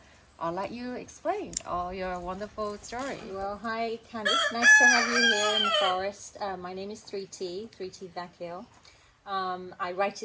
I'll let you explain all your wonderful story. Well, hi Candice, nice to have you here in the forest. My name is 3T Vakil. I write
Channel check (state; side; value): identical; both; correlation 1.00